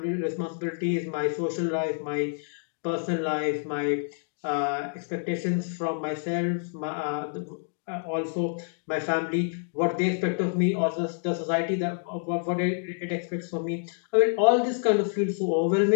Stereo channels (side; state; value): right; silent; 57 dB below the other